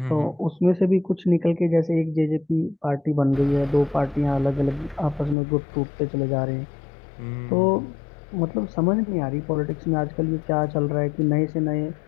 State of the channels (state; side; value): drops out; right; at 5.4 s